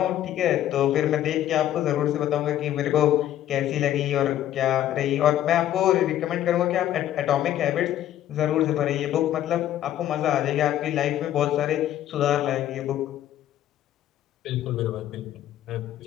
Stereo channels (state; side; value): quieter; right; 12.2 dB